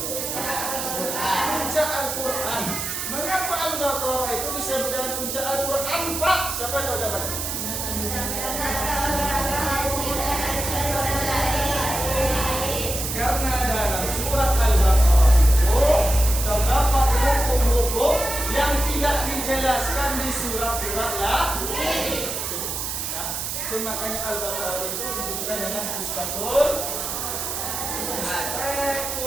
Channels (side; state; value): right; noise; hiss, 3 dB below the sound